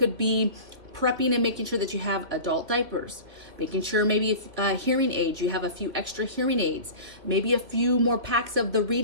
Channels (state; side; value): late; left; 2.6 ms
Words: be prepping and making sure that you have adult diapers, making sure maybe if hearing aids, you have a few extra hearing aids, maybe a few more packs of the